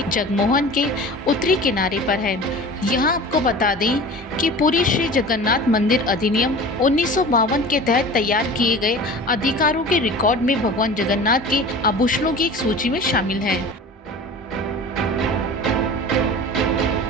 जगमोहन के उत्तरी किनारे पर है। यहाँ आपको बता दें कि पुरी श्री जगन्नाथ मंदिर अधिनियम 1952 के तहत तैयार किए गए अधिकारों के रिकॉर्ड में भगवान जगन्नाथ के आभूषणों की एक सूची में शामिल है।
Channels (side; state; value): both; normal; correlation 0.38